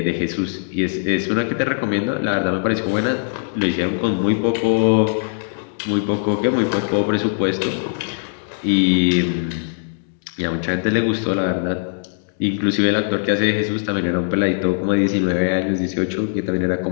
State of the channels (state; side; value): silent; right; digital silence